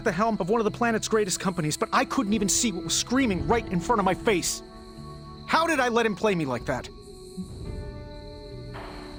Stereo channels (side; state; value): both; identical; correlation 1.00